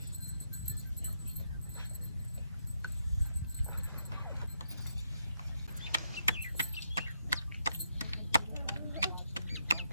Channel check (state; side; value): inverted; both; correlation -0.79